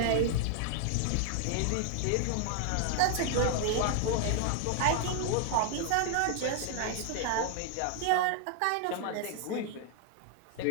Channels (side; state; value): both; different; correlation 0.00